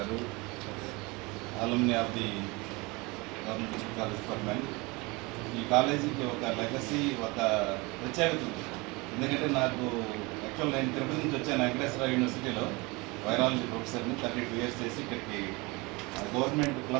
alumni of the government college for men. ఈ కాలేజీకి ఒక లెగసీ, ఒక ప్రత్యేకత ఉంది. ఎందుకంటే నాకు యాక్చువల్ నేను తిరుపతి నుంచి వచ్చాను. వెంకటేశ్వర యూనివర్సిటీలో వైరాలజీ ప్రొఫెసర్ని 32 years చేసి ఇక్కడికి గవర్నమెంట్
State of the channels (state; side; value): quieter; left; 25.4 dB